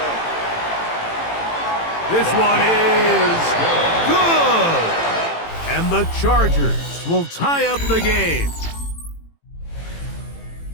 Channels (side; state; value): right; late; 18 ms